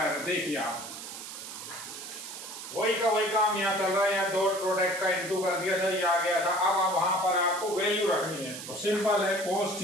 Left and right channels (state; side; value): noise; right; hiss, 10 dB below the sound